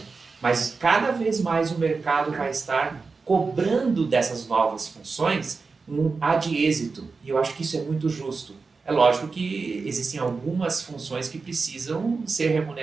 Mas cada vez mais o mercado vai estar cobrando dessas novas funções um ad êxito, e eu acho que isso é muito justo. É lógico que existem algumas funções que precisam ser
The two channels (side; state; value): left; quieter; 4.5 dB